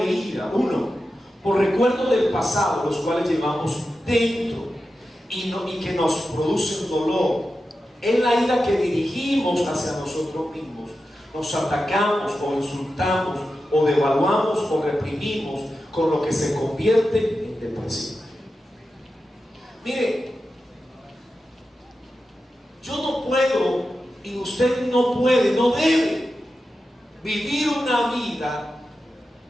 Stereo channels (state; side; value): normal; both; correlation 0.91